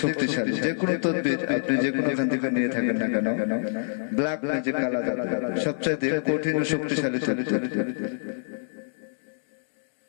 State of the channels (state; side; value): silent; right; digital silence